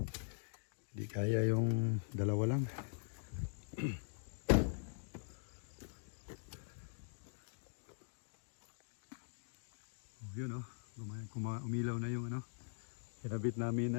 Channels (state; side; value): silent; right; digital silence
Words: Hindi kaya yung dalawa lang. Oh, yun oh. Umilaw na yung ano. Kinabit namin